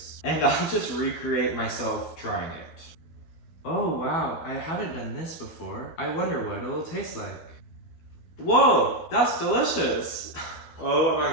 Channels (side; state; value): right; late; 12 ms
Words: And I'll just recreate myself trying it. Oh wow, I haven't done this before. I wonder what it'll taste like. Whoa, that's delicious. Oh my